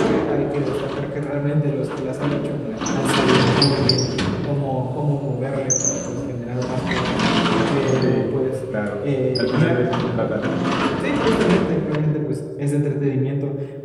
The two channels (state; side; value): identical; both; correlation 1.00